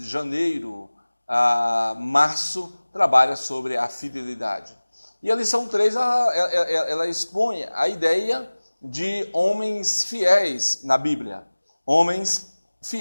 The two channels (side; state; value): both; inverted; correlation -1.00